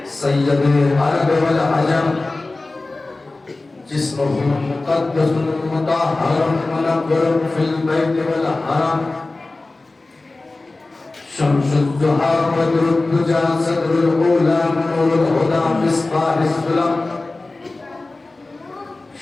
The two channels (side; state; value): right; quieter; 3.2 dB